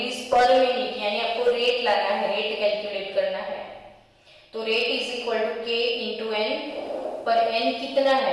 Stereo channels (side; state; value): both; identical; correlation 1.00